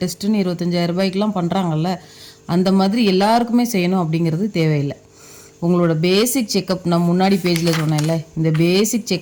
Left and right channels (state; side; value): identical; both; correlation 1.00